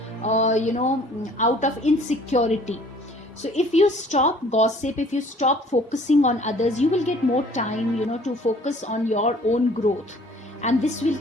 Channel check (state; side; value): normal; both; correlation 0.54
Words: out of insecurity. So if you stop gossip, if you stop focusing on others, you will get more time, to focus on your own growth, and this will